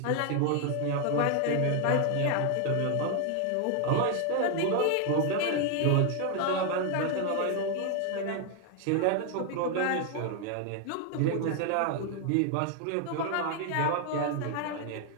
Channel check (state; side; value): different; both; correlation 0.00